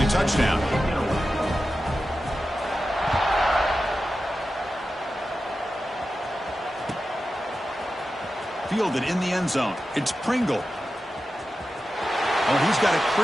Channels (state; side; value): normal; both; correlation 0.92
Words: a touchdown. Fielded in the end zone. It's Pringle. Oh, he's got a